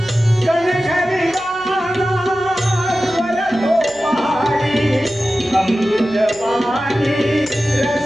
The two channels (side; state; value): right; noise; hum, 26 dB below the sound